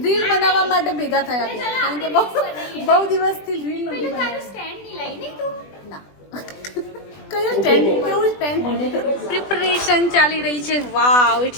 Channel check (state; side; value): late; right; 20 ms